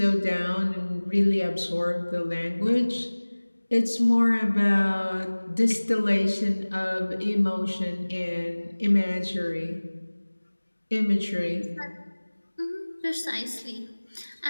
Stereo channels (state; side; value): inverted; both; correlation -1.00